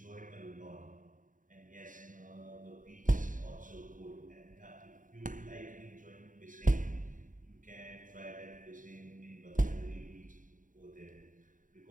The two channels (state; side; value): late; left; 0.38 ms